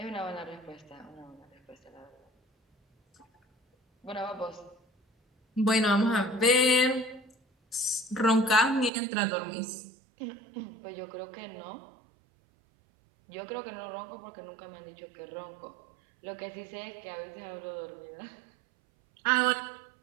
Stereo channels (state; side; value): drops out; left; at 8.9 s